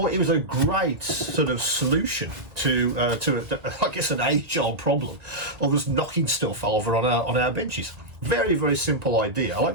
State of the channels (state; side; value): late; left; 1.9 ms